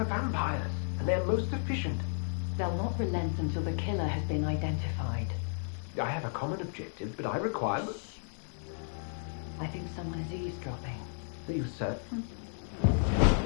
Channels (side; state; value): right; silent; digital silence